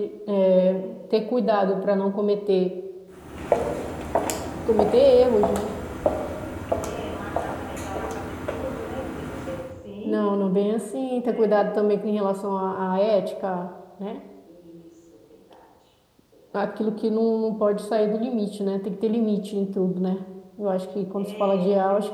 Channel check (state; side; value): identical; both; correlation 1.00